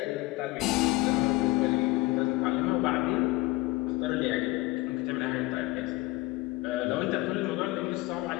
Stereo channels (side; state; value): right; quieter; 20.0 dB